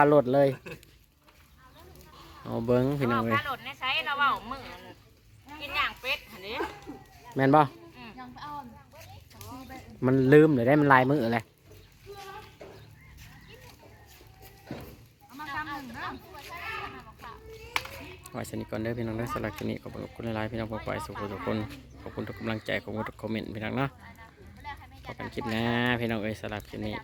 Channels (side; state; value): both; identical; correlation 1.00